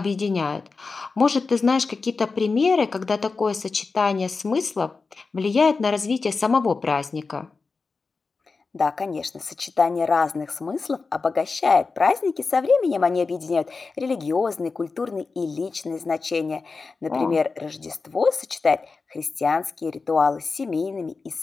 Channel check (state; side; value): quieter; right; 4.3 dB